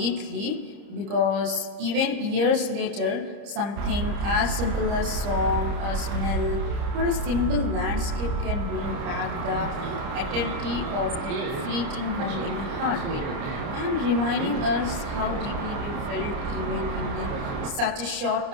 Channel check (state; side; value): late; left; 30 ms